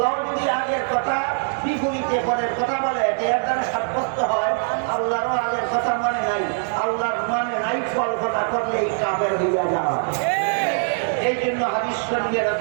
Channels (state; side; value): silent; left; digital silence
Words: যদি আগের কথা বিপরীতে পরের কথা বলে এর দ্বারা সাব্যস্ত হয় আল্লাহরও আগের কথা মনে নাই, আল্লাহর মানে নাই, কল্পনা করলেই কাফের হইয়া যাওয়া। এই জন্য হাদিস শরীফে